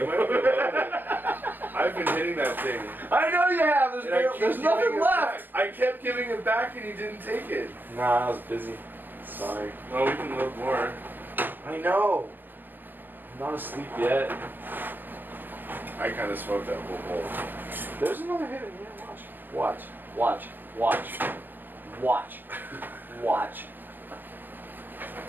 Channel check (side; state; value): left; late; 0.093 ms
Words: I've been hitting that thing. I know you have. There's nothing left. I kept giving it back, and you didn't take it. Nah, I was busy. Sorry. Well, we can load more. I know. I'm not asleep yet. I kind of smoked that whole bowl. There's another hit in here. Watch. Watch. Watch. Watch. Watch.